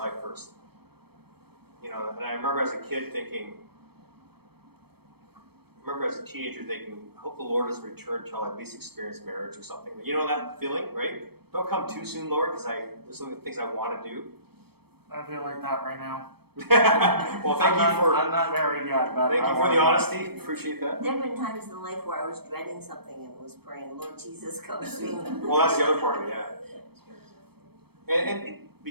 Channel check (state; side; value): late; left; 0.96 ms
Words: first. You know, and I remember as a kid thinking, as a teenager thinking, I hope the Lord doesn't return until I at least experience marriage or something. You know that feeling, right? Don't come too soon, Lord, because there's some things I want to do. I feel like that right now. Well, I'm not married yet, but thank I you for want the to. honesty. Appreciate that. There have been times in life where I was dreading something and was praying, Lord Jesus, come soon. Well, that's the other part of it, yeah. And